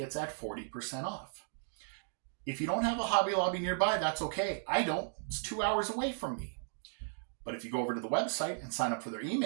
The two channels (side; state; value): left; silent; digital silence